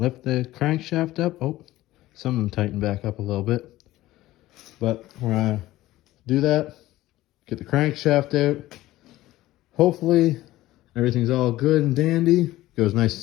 the crankshaft up. Oh, some of them tighten back up a little bit. But we're going to do that, get the crankshaft out. Hopefully everything's all good and dandy, goes nice and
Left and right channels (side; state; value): right; quieter; 16.3 dB